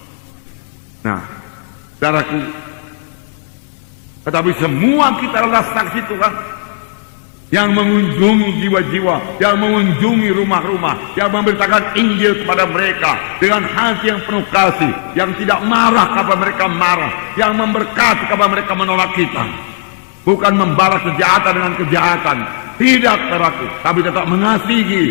Nah, saudaraku, tetapi semua kita adalah saksi Tuhan yang mengunjungi jiwa-jiwa, yang mengunjungi rumah-rumah, yang memberitakan Injil kepada mereka dengan hati yang penuh kasih, yang tidak marah kepada mereka marah, yang memberkati kepada mereka menolak kita. Bukan membalas kejahatan dengan kejahatan, tidak, saudaraku, tapi tetap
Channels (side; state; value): right; silent; digital silence